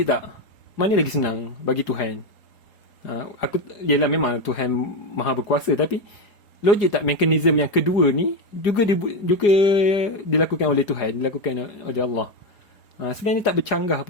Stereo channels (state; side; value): late; right; 4.9 ms